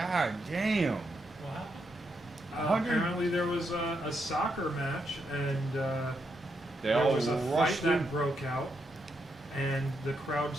damn. Wow. Apparently there was a soccer match, and They there all was a fight rushed in. that broke out, and the crowd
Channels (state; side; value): normal; both; correlation 0.81